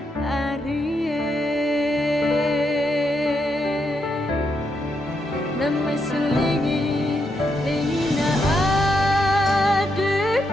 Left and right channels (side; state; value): both; normal; correlation 0.80